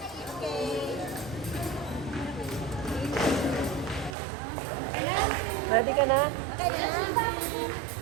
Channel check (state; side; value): drops out; left; at 4.2 s